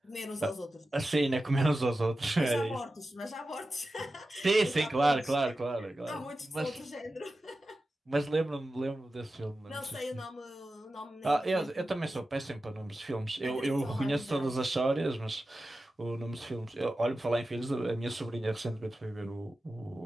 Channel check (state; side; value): normal; both; correlation 0.93